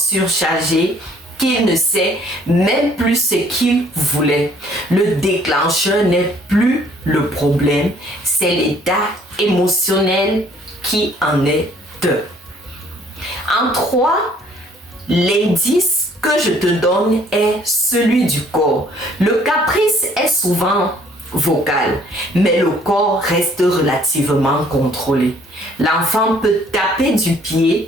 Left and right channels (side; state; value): both; normal; correlation 0.60